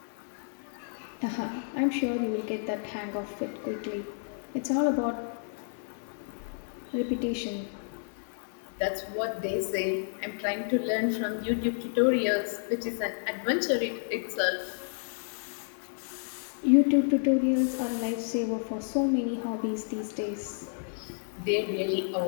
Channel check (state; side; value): silent; right; digital silence